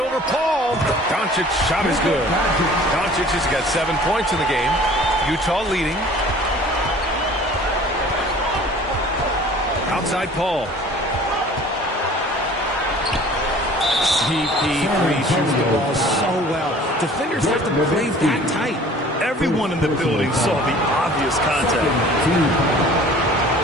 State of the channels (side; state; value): both; normal; correlation 0.48